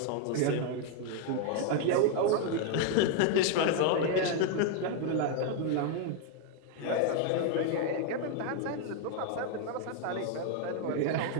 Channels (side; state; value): both; different; correlation 0.00